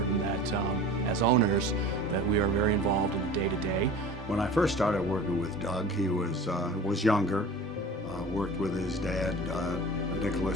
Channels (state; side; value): normal; both; correlation 0.38